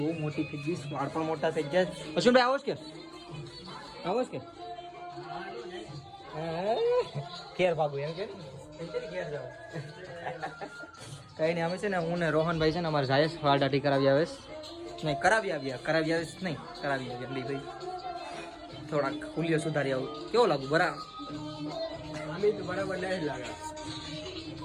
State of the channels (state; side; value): identical; both; correlation 1.00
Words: બહુ મોટી થઈ ગઈ, વાળ પણ મોટા થઈ ગયા. અશ્વિનભાઈ આવો કે ઘેર ભાગું એમ કે ઘેર જાવ. કઈ નહીં અમે છે ને હું ને રોહનભાઈ છે ને અમારે જાય વાળ દાઢી કરાવી આવે નહીં, કરાવી આવ્યા ભાઈ. થોડાક ખુલ્લીઓ સુધારી આવું. કેવો લાગુ? બરાબર નહીં લાગે.